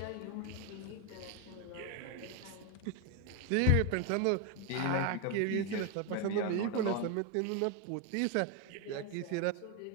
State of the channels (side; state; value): both; different; correlation 0.01